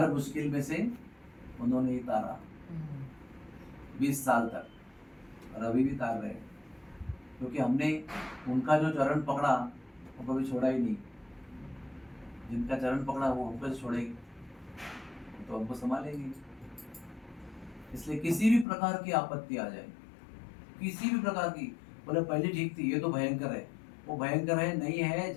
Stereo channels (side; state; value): right; drops out; at 18.7 s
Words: मुश्किल में से उन्होंने ही तारा 20 साल तक, और अभी भी तार रहे, क्योंकि हमने उनका जो चरण पकड़ा वो कभी छोड़ा ही नहीं। जिनका चरण पकड़ा वो हमको छोड़ेगी तो हमको संभालेंगे। इसलिए किसी भी प्रकार की आपत्ति आ जाए, किसी भी प्रकार की, बोले पहले ठीक थी, ये तो भयंकर है, वो भयंकर है नहीं है,